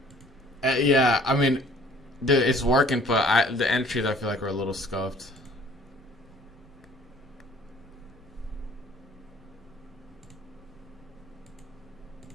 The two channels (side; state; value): both; normal; correlation 0.54